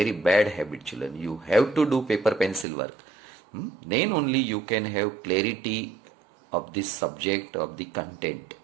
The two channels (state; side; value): drops out; left; at 2.7 s